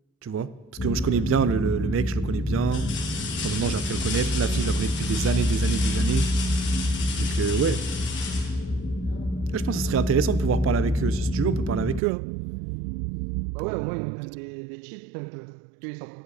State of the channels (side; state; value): left; drops out; at 12.0 s